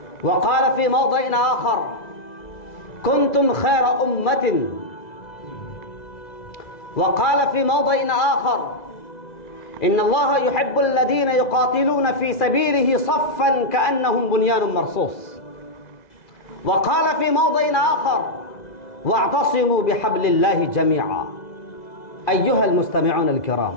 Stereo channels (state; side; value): late; right; 2.4 ms